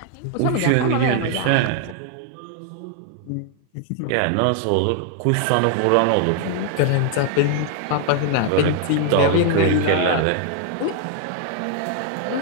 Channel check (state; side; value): different; both; correlation 0.00